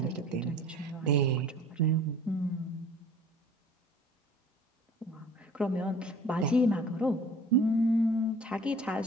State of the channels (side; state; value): both; normal; correlation 0.49